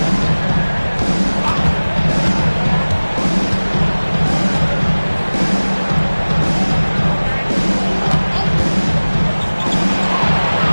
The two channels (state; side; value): inverted; both; correlation -1.00